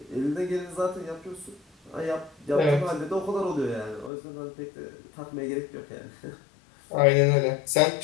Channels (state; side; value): drops out; right; at 4.1 s